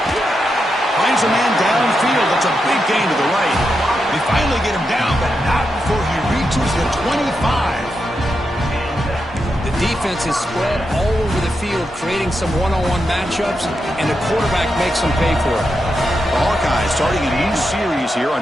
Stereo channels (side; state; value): both; normal; correlation 0.86